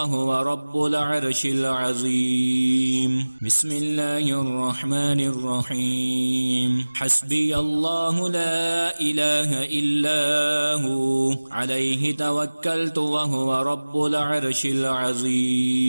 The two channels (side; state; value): both; inverted; correlation -1.00